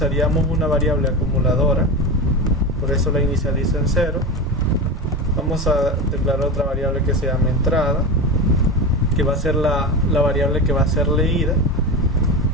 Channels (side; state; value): both; normal; correlation 0.22